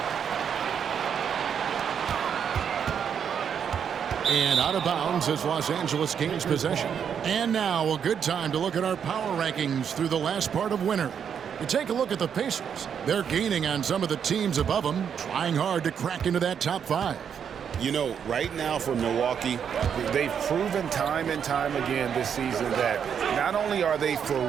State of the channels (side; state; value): left; quieter; 7.8 dB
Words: And out of bounds as Los Angeles gains possession. And now a good time to look at our power rankings through the last part of winter. You take a look at the Pacers. They're gaining on some of the teams above them, trying hard to crack into that top 5. You know, right now for Milwaukee, they've proven time and time again this season that not only are they for